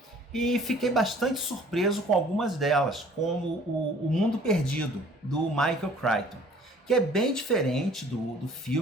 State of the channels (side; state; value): both; normal; correlation 0.53